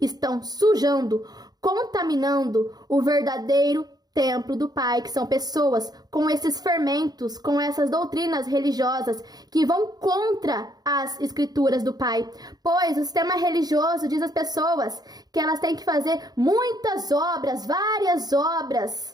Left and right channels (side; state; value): left; late; 0.19 ms